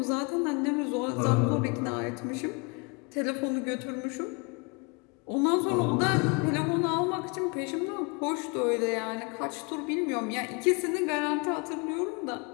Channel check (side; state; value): right; quieter; 31.2 dB